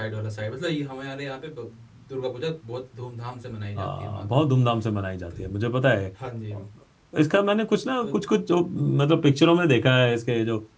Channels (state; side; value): identical; both; correlation 1.00